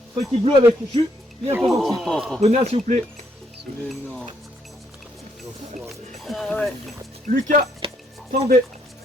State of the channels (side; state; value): both; normal; correlation 0.72